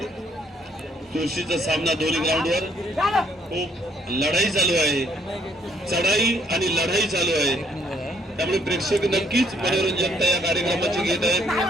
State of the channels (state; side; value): normal; both; correlation 0.68